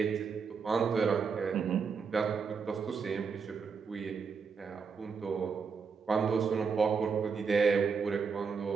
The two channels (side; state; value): left; quieter; 5.6 dB